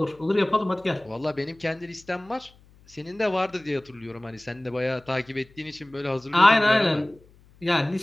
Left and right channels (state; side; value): noise; left; hum, 28 dB below the sound